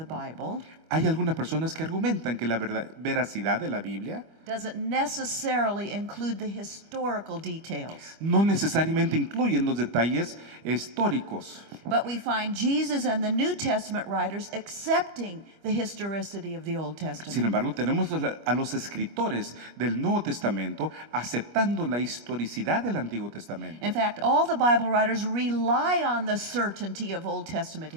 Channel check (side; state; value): left; late; 25 ms